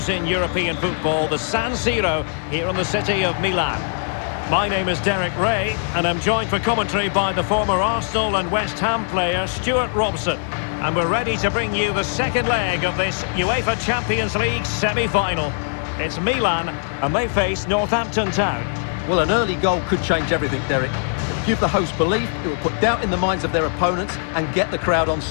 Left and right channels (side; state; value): right; silent; digital silence